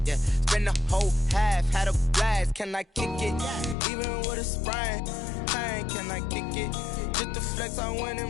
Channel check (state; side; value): drops out; right; at 3.8 s